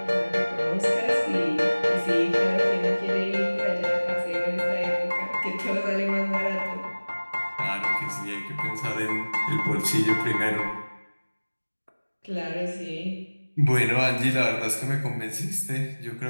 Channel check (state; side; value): inverted; both; correlation -1.00